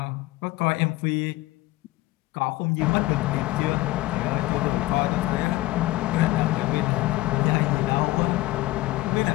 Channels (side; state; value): right; quieter; 18.3 dB